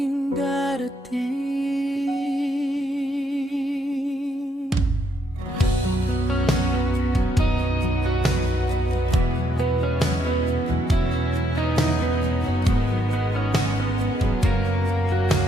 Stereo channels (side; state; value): both; normal; correlation 0.74